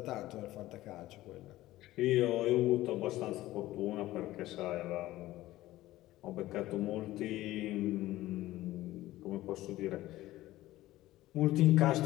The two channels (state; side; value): quieter; right; 16.2 dB